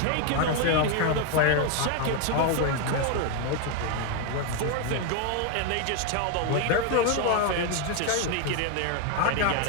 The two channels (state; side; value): different; both; correlation 0.01